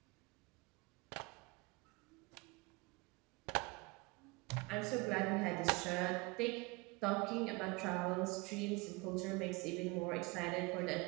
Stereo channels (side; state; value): left; quieter; 25.5 dB